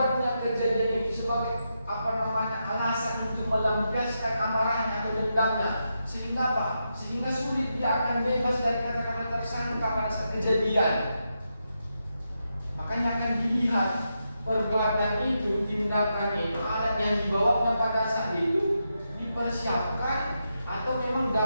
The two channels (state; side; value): inverted; both; correlation -0.85